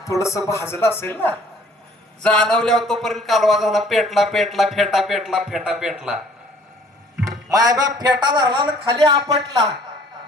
थोडस भाजलं असेल ना, जाणवल्यावर तोपर्यंत कालवा झाला, पेटला पेटला, फेटा पेटला, फेटा पेटला. मायबाप फेटा धरला ना खाली आपटला.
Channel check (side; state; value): both; normal; correlation 0.56